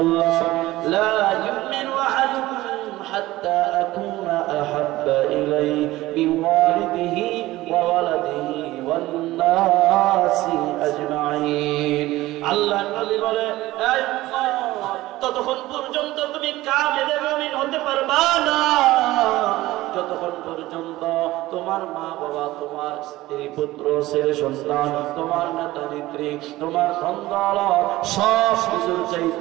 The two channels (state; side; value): quieter; left; 17.3 dB